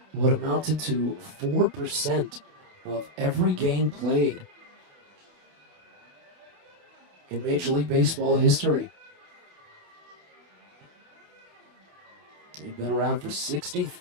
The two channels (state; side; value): late; left; 28 ms